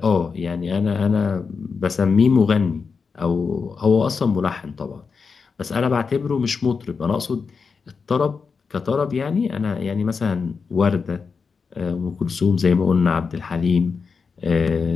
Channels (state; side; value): quieter; right; 5.3 dB